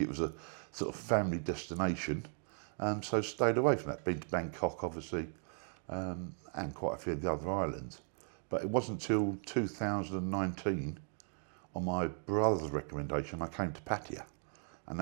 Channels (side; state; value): left; silent; 53 dB below the other